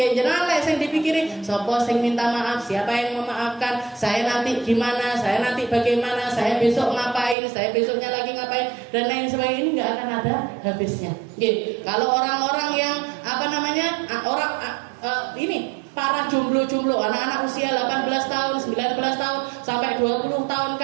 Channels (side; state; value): left; drops out; at 7.4 s